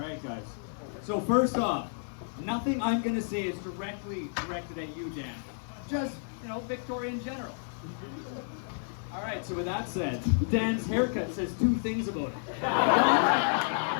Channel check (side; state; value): right; silent; digital silence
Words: guys. So first off, nothing I'm going to say is directly directed at you, Dan. Just, Victoria in general. All right, so with that said, Dan's haircut says two things about it.